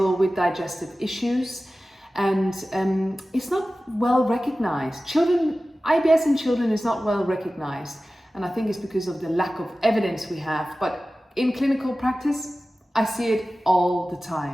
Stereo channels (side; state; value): both; normal; correlation 0.96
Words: with digestive issues. And it's not well recognized. IBS in children is not well recognized. And I think it's because of the lack of evidence we have. But in clinical practice, I see it all the